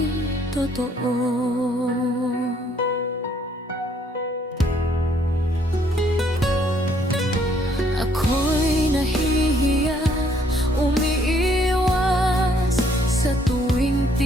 totoo. Ako'y nahihiya, umiiwas sa tuwing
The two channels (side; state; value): both; normal; correlation 0.66